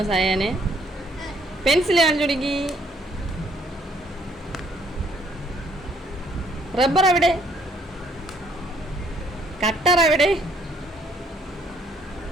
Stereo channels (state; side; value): normal; both; correlation 0.65